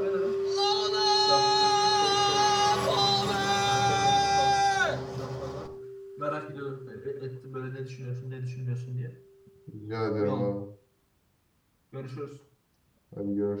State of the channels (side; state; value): both; identical; correlation 1.00